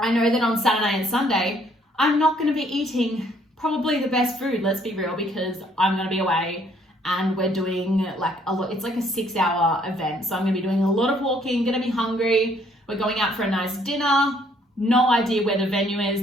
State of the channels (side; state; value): both; normal; correlation 0.65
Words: know that on Saturday and Sunday, I'm not going to be eating probably the best food, let's be real, because I'm going to be away and we're doing like a lot. It's like a 6-hour event. So I'm going to be doing a lot of walking, going to be hungry. We're going out for a nice dinner. No idea where the venue is.